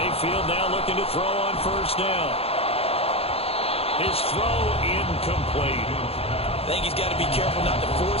now looking to throw on first down. His throw incomplete. I think he's got to be careful not to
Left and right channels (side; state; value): right; late; 0.29 ms